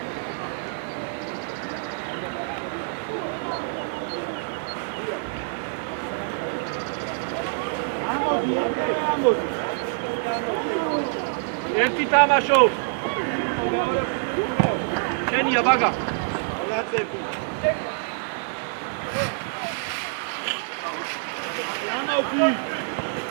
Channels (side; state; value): left; silent; digital silence